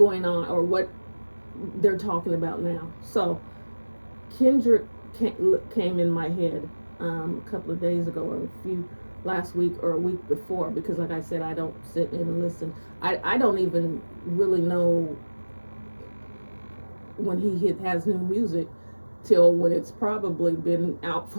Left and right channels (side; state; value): both; inverted; correlation -1.00